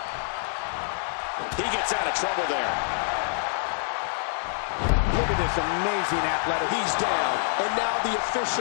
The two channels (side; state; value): right; silent; digital silence